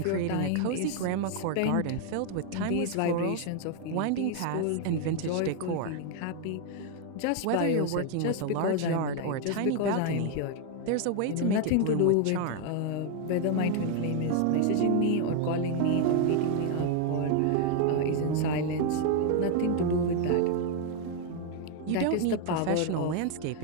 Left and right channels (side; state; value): both; different; correlation 0.00